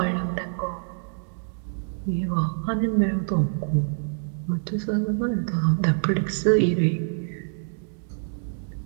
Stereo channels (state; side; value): silent; left; 61 dB below the other